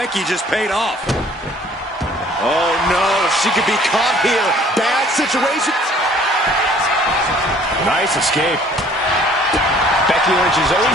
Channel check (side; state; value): both; normal; correlation 0.56